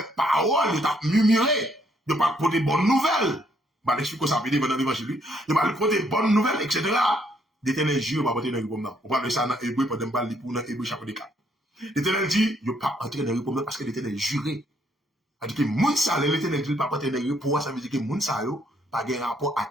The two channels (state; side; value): normal; both; correlation 0.70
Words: parole, vous êtes murmuré, vous pas porter bonne nouvelle. Bah, l'explique ça veut dire dans l'évangile, vous pas porter bonne nouvelle, etc. L'Éternel jure, va porter dans le repos non. On parle de ça dans Hébreu, pour ne pas le pour dans Hébreu chapitre 4. L'Éternel dit, vous pas entrer dans le repos non, parce que l'Éternel juré. C'est-à-dire que moun sa, l'Éternel dit, pas porter dans le repos, ça veut dire que moun sa yo, pas de rapport avec